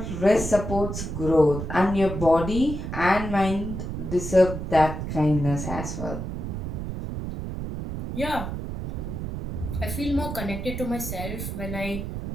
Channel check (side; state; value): right; noise; rumble, 5 dB below the sound